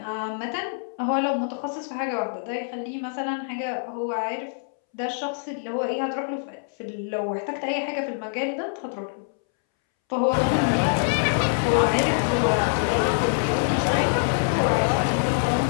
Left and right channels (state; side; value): silent; right; 62 dB below the other